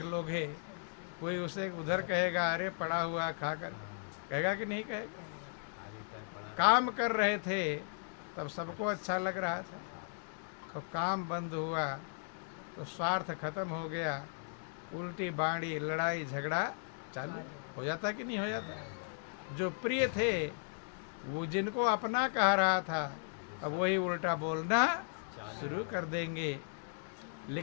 लोगे, कोई उसे उधर कहेगा अरे पड़ा हुआ खाकर, कहेगा कि नहीं कहेगा? काम कर रहे थे तब सबको अच्छा लग रहा था, तो काम बंद हुआ तो स्वार्थ खत्म हो गया, उल्टी बाड़ी लड़ाई झगड़ा चालू हो जाता कि नहीं हो जाता? जो प्रिय थे वो जिनको अपना कह रहा था, अब वही उल्टा बोलना शुरू कर देंगे।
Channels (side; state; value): right; silent; digital silence